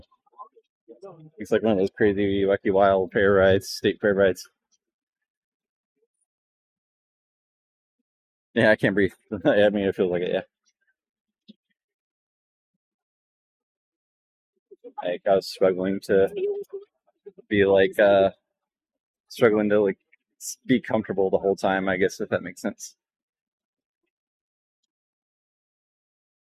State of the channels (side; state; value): both; identical; correlation 1.00